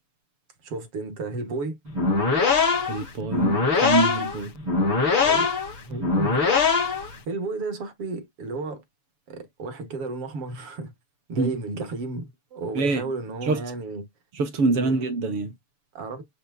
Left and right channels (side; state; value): left; late; 7.0 ms